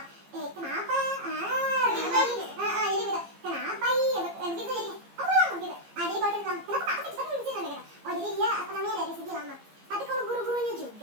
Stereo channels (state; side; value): late; left; 15 ms